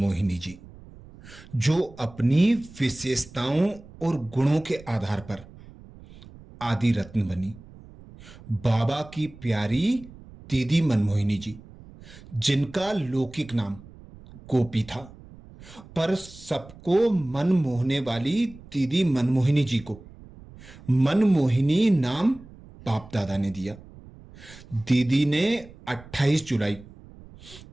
जी, जो अपनी विशेषताओं और गुणों के आधार पर आदि रत्न बनी, बाबा की प्यारी दीदी मनमोहिनी जी, जिनका लौकिक नाम गोपी था, पर सबको मन मोहने वाली दीदी मनमोहिनी जी को मनमोहिनी नाम बाप दादा ने दिया। दीदी ने 28 जुलाई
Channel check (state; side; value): noise; right; rumble, 20 dB below the sound